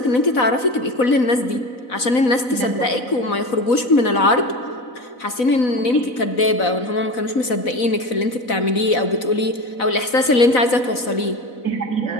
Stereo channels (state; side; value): late; right; 4.0 ms